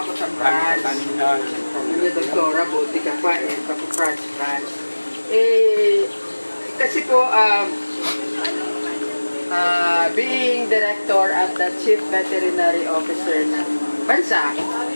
sa France. Ano, doktora, buti ka pa eh, France. Kasi po, being director at the chief veterinary officer ng bansa,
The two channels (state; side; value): inverted; both; correlation -1.00